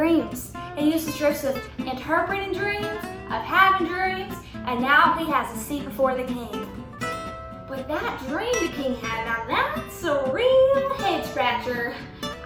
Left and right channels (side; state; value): both; identical; correlation 1.00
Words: He used his gifts of interpreting dreams, of having dreams, and now he has a seat before the king. But that dream the king had, now that's a real head scratcher.